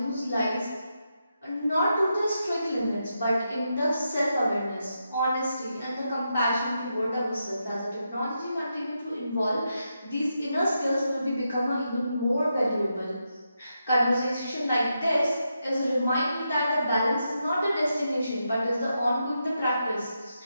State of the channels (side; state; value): both; inverted; correlation -0.85